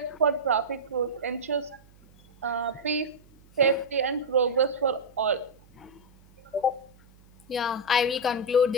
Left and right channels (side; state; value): right; noise; hum, 27 dB below the sound